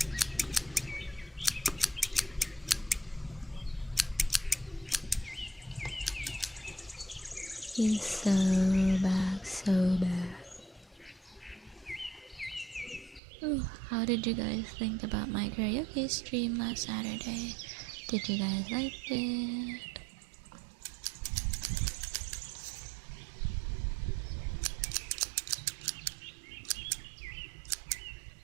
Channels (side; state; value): left; drops out; at 13.2 s